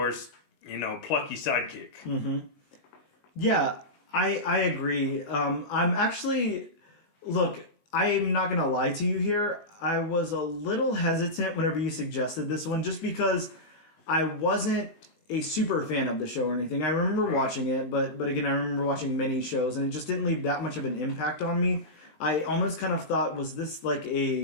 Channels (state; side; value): late; right; 19 ms